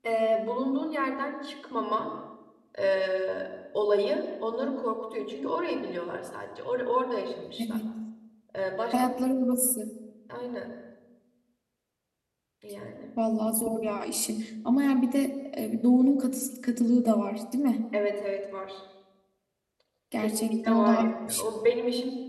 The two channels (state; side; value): identical; both; correlation 1.00